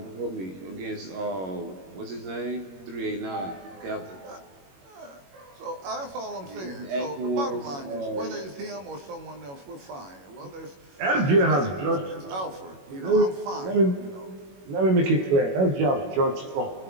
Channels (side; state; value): left; late; 21 ms